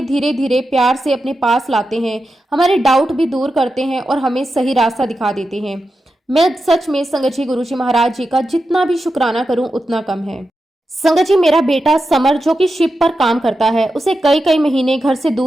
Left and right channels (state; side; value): normal; both; correlation 0.90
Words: धीरे धीरे प्यार से अपने पास लाते हैं, हमारे डाउट भी दूर करते हैं और हमें सही रास्ता दिखा देते हैं। मैं सच में संगत जी, गुरुजी महाराज जी का जितना भी शुक्राना करूं उतना कम है। संगत जी, मेरा बेटा समर जो कि शिप पर काम करता है, उसे कई कई महीने घर से